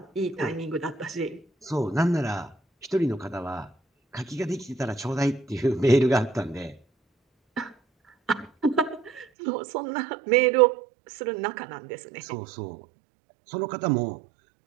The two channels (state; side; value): drops out; left; at 9.2 s